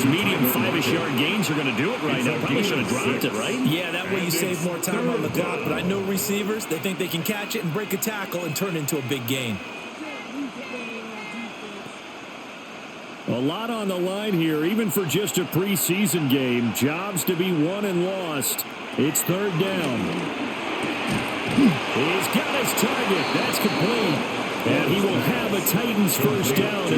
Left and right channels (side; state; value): both; identical; correlation 1.00